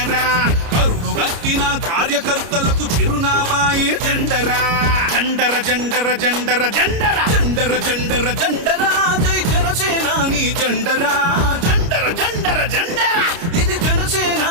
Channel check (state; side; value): late; left; 30 ms